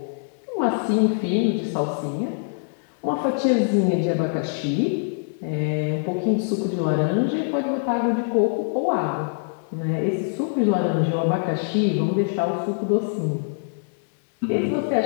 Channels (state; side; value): silent; right; digital silence